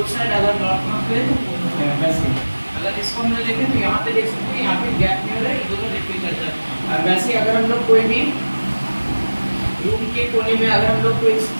साइड अगर नॉर्थ नॉर्थ करे तो वो होता है, वैसे अगर इसको हम लोग देखें तो यहाँ पे देख सकते हैं यहाँ पे गैप नहीं हो रहा है, ये दोनों रिपेल करता है। और वैसे अगर हम लोग कोई भी रूम के कोने में अगर हम लोग कोई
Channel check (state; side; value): inverted; both; correlation -1.00